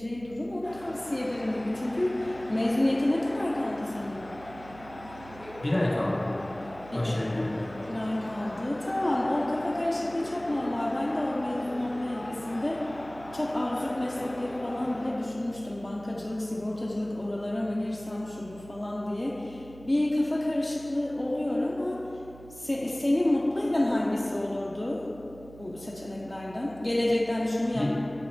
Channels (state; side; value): noise; right; hum, 19 dB below the sound